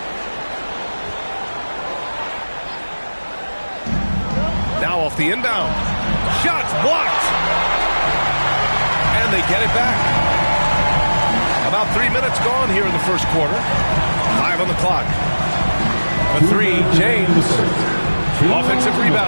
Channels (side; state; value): both; inverted; correlation -1.00